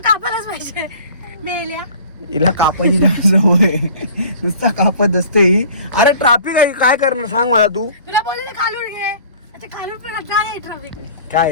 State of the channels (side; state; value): both; inverted; correlation -0.46